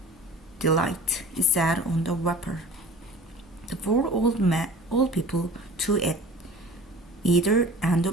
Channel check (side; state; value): both; normal; correlation 0.43